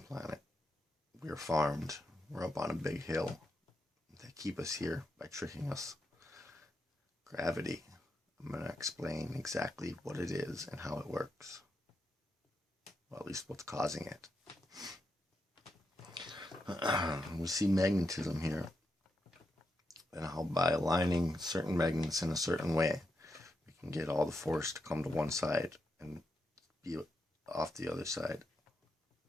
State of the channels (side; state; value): both; normal; correlation 0.84